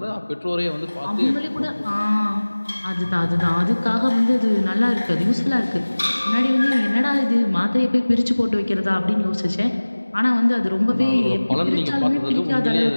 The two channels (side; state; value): both; inverted; correlation -1.00